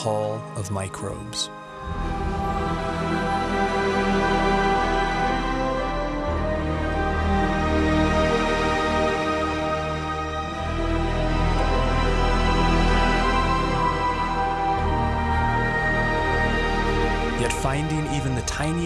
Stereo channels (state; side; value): identical; both; correlation 1.00